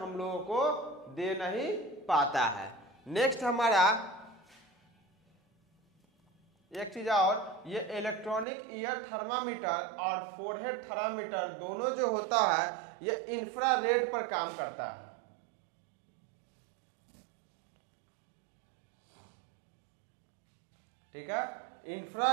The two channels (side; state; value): left; drops out; at 8.5 s